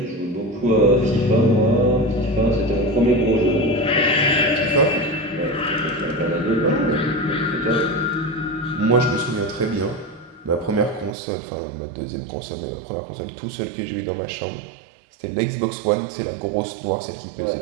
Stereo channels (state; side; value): drops out; left; at 11.2 s